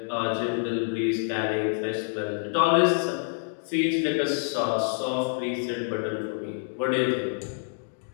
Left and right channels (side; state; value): right; silent; digital silence